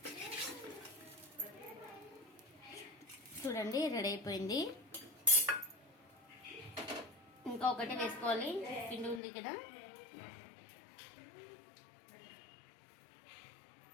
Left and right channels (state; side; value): drops out; right; at 9.2 s